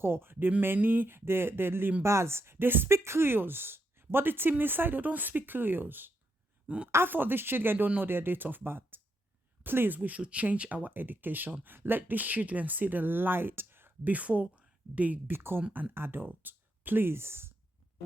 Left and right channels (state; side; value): normal; both; correlation 0.81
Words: the Meni, the Limbas, they speak Creoles. But the Timini side, they don't speak Creoles. Half of these children don't know their date of birth. Please, we should change our education. Let these children see the light before they become an adult. Please, I